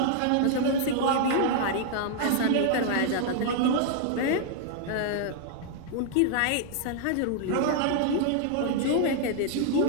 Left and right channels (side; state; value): both; different; correlation 0.00